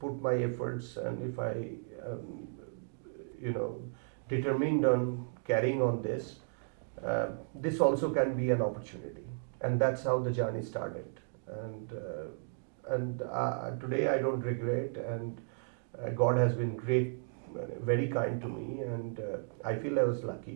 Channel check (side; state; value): left; silent; digital silence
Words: my efforts, and if I um, you know determined on carrying on this, uh, this also can be an opportunity, and that's how the journey started. And today I don't regret, and God has been great, very kind to me, and I feel I was